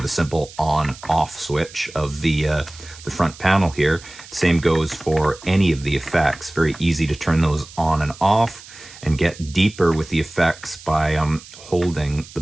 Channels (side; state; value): right; noise; hiss, 19 dB below the sound